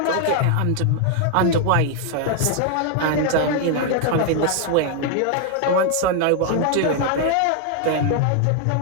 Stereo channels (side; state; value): both; different; correlation 0.00